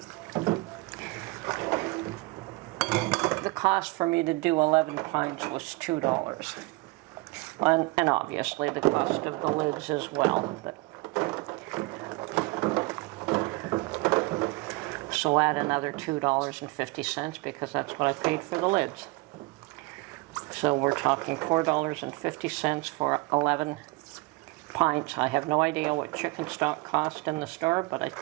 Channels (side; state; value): left; quieter; 24.4 dB